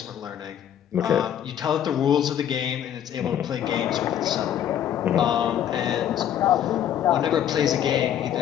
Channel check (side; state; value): right; quieter; 10.2 dB